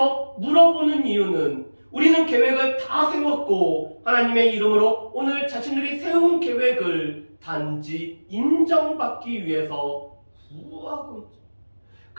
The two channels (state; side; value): inverted; both; correlation -1.00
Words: 물어보는 이유는 우리는 계획을 다 세웠고 하나님의 이름으로 오늘 자신들이 세운 계획을 단지 인정받기 위해서 구하고 있죠.